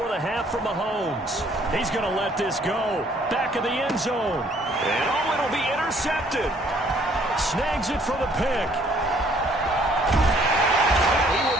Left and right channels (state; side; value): normal; both; correlation 0.62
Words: the half for Mahomes. He's going to let this go. Back of the end zone. And oh, it'll be intercepted. Snags it for the pick. He will